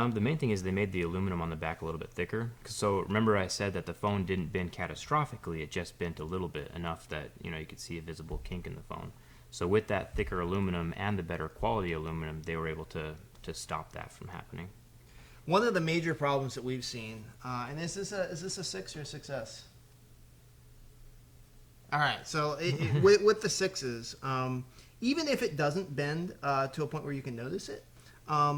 main thing is they made the aluminum on the back a little bit thicker. So remember I said that the phone didn't bend catastrophically, it just bent a little bit, enough that you could see a visible kink in the phone. So with that thicker aluminum and the better quality aluminum, they were able to stop that from happening. One of the major problems that we've seen, and is this a 6 or a 6S? All right, so with the 6s, even if it doesn't bend to a point where you can notice it,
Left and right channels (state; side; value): identical; both; correlation 1.00